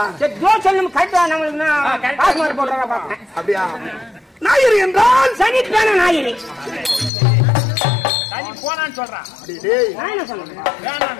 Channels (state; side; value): drops out; right; at 7.1 s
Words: அப்படியா ஞாயிறு என்றால் சனிக்கிழமை ஞாயிறு சனி போனான்னு சொல்றான்